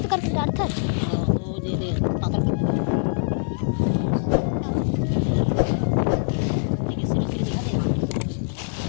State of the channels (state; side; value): silent; right; digital silence